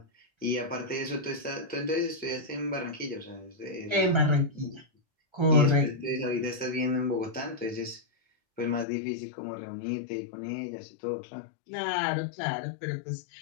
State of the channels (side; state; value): right; drops out; at 8.8 s